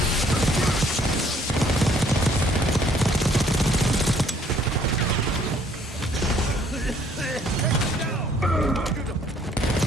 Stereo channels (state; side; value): normal; both; correlation 0.62